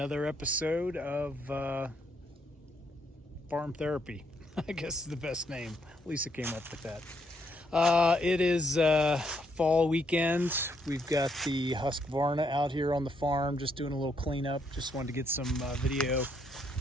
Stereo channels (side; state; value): both; normal; correlation 0.74